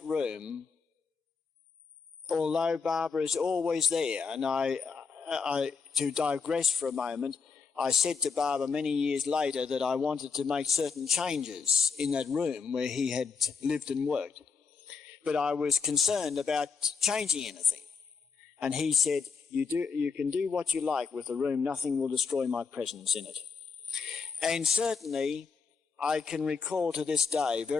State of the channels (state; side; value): quieter; right; 5.3 dB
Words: room, although Baba is always there, and I to digress for a moment, I said to Baba many years later that I wanted to make certain changes in that room where he had lived and worked. But I was concerned about changing anything. And he said, you can do what you like with the room, nothing will destroy my presence in it. And certainly, I can recall to this day